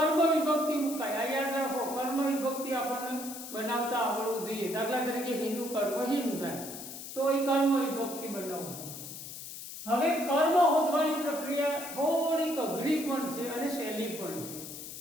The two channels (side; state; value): left; noise; hiss, 10 dB below the sound